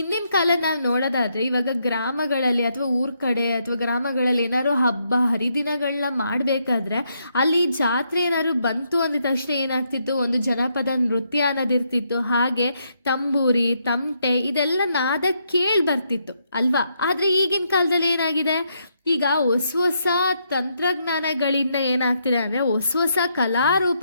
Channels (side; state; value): both; inverted; correlation -0.77